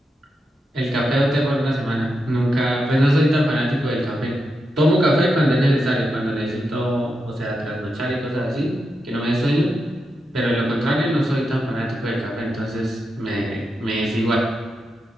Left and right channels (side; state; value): both; normal; correlation 0.86